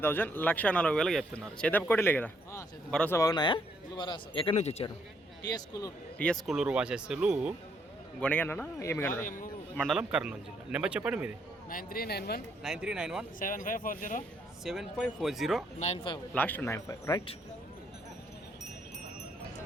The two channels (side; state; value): both; normal; correlation 0.71